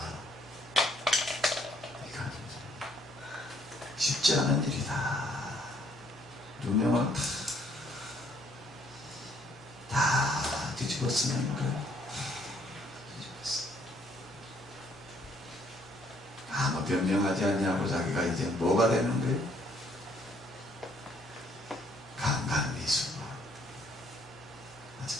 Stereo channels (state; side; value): normal; both; correlation 0.66